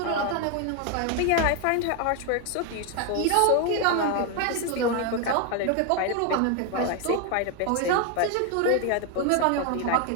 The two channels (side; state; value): both; different; correlation 0.01